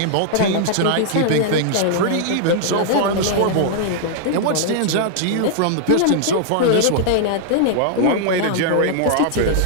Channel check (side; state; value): both; different; correlation -0.01